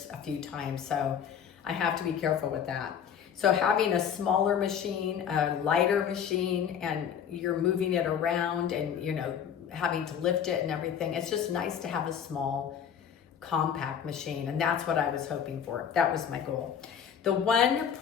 a few times, so I have to be careful with that. So having a smaller machine, a lighter machine, and you're moving it around and having to lift it and everything, it's just nice to have a small, compact machine, and that's what I was hoping for. That was my goal. The one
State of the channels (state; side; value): quieter; right; 8.3 dB